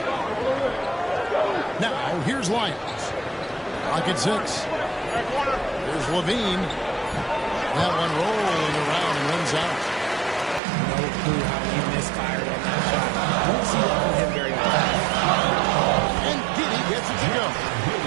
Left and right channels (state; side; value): drops out; left; at 10.6 s